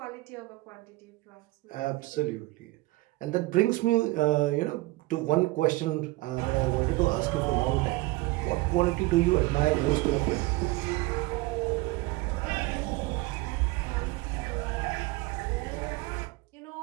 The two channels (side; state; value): left; quieter; 20.7 dB